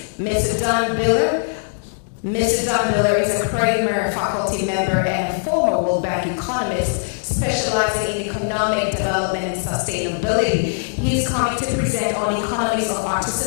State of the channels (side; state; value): right; silent; digital silence